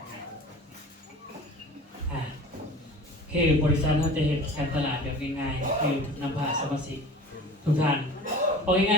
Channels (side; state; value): both; normal; correlation 0.40